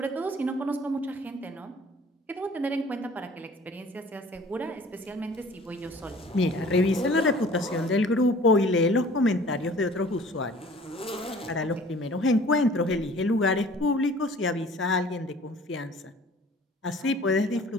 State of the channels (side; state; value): both; normal; correlation 0.49